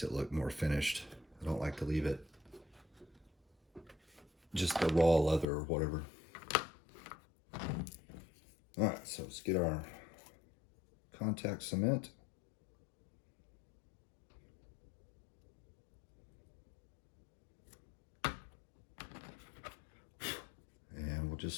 it look more finished. I don't like to leave it just the raw leather or whatever. All right, so let's get our contact cement. And we'll just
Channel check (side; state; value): right; drops out; at 5.5 s